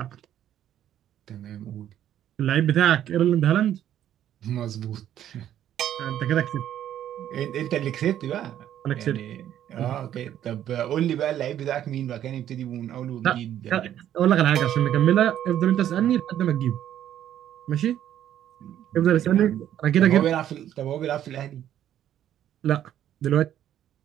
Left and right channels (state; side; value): quieter; left; 11.1 dB